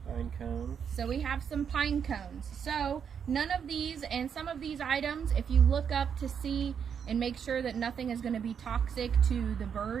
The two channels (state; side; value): quieter; left; 7.5 dB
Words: Pine cones. So we have some pine cones. So none of these and some of these items, if you look up to see and make sure that nothing is going to be toxic to the